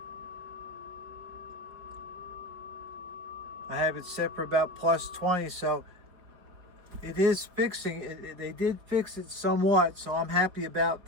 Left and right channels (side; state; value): left; late; 4.9 ms